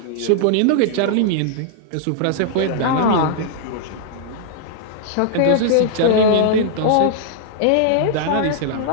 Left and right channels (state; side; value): different; both; correlation -0.01